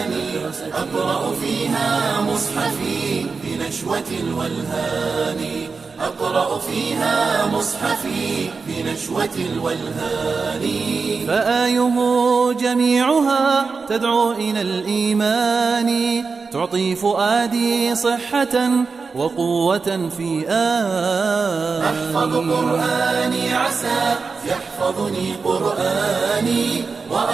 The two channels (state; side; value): quieter; left; 4.7 dB